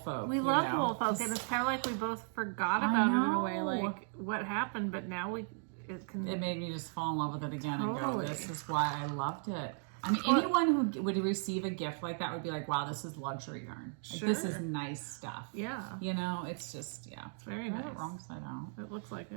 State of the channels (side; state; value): left; silent; 54 dB below the other